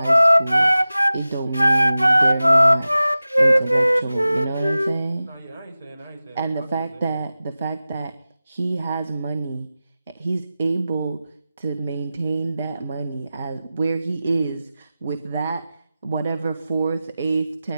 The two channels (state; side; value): inverted; both; correlation -0.95